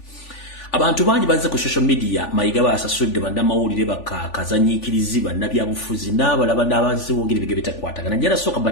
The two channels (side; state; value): right; late; 3.4 ms